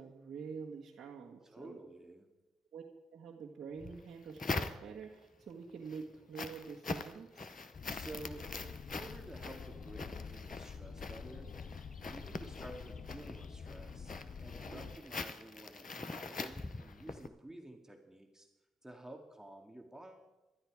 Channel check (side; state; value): both; normal; correlation 0.77